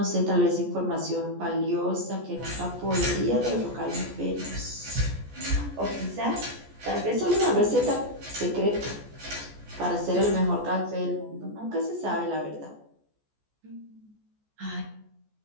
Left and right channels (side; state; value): left; late; 14 ms